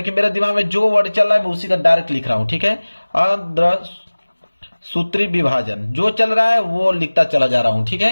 मेरे दिमाग में जो वर्ड चल रहा है मैं उसी का डायरेक्ट लिख रहा हूं, ठीक है। अर्धसूत्री विभाजन जो चल रहा है वो लिखता चला जा रहा हूं, ठीक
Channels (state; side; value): inverted; both; correlation -1.00